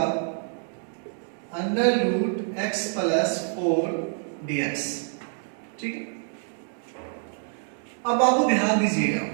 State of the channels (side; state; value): left; silent; 56 dB below the other